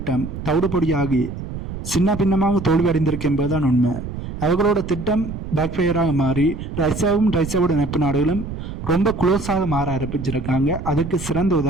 தவிடுபொடியாகி சின்ன பின்னமாக தோல்வி அடைந்திருக்கு என்பதுதான் உண்மை. அவர்களோட திட்டம் பேக்ஃபயராக மாறி ரஷ்யாவோட நட்பு நாடுகளும் ரொம்ப க்ளோஸாக மாற ஆரம்பிச்சிருக்காங்க. அதுக்கு சிறந்த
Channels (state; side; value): noise; right; rumble, 8 dB below the sound